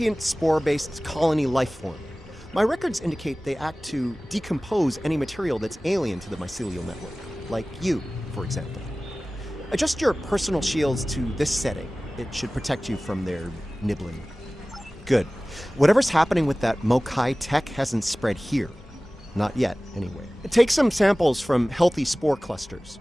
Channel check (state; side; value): normal; both; correlation 0.98